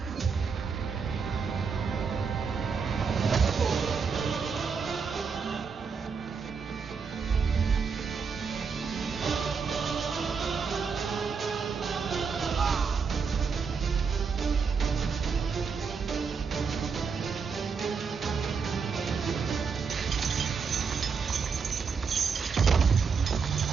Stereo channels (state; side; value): quieter; left; 5.6 dB